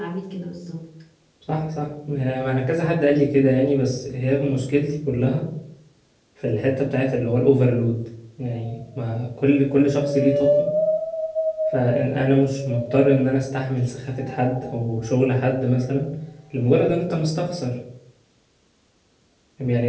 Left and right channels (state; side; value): identical; both; correlation 1.00